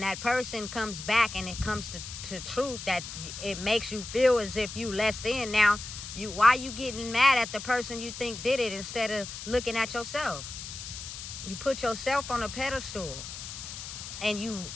person comes back and it comes to truth, that it makes you feel as if you less than. Now, why you getting mad at the person you think did it instead of looking at yourself? You put yourself on a pedestal and you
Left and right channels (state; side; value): noise; left; hiss, 10 dB below the sound